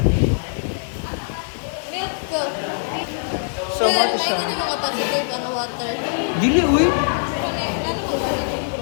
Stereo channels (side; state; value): right; silent; digital silence